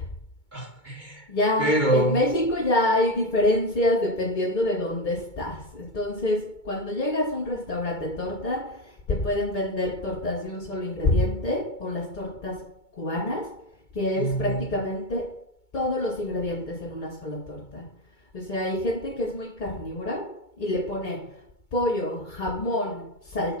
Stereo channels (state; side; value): late; right; 2.2 ms